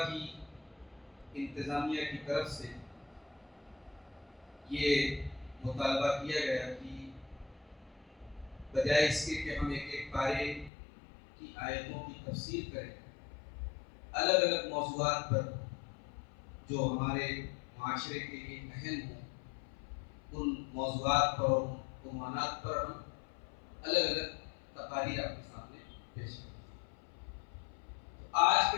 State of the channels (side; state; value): right; drops out; at 10.7 s